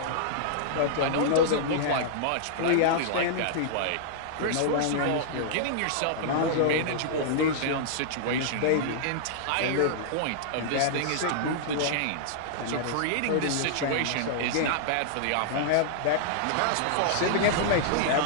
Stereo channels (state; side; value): different; both; correlation -0.01